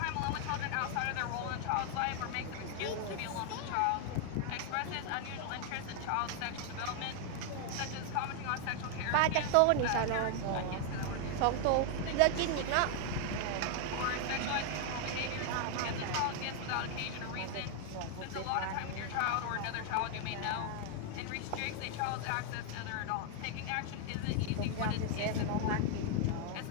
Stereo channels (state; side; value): different; both; correlation 0.00